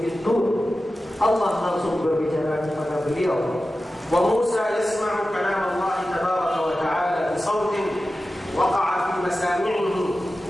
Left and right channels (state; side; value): normal; both; correlation 0.94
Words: Tur. Allah langsung berbicara kepada beliau. Wa Musa yasma'u kalam Allah tabaraka wa ta'ala bi sautin waqa'a fi masami'ihi